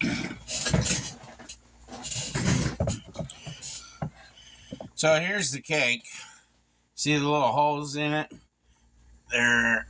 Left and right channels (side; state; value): both; identical; correlation 1.00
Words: So here's the cake. See the little holes in it? They're